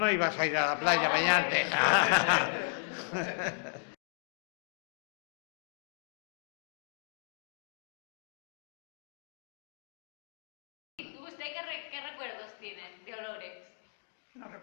ibas a ir a la playa a bañarte. ¿Y usted qué recuerdos tiene de olores? No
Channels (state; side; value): silent; right; digital silence